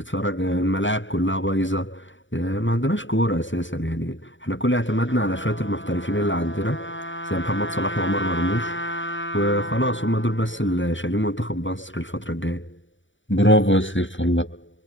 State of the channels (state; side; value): late; right; 0.55 ms